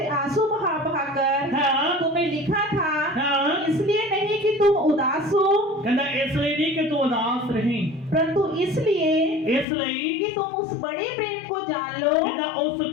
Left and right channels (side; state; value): right; drops out; at 9.7 s